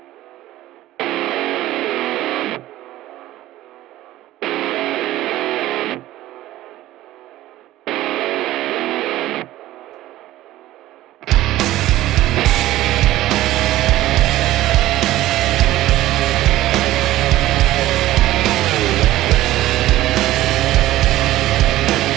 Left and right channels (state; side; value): quieter; left; 15.4 dB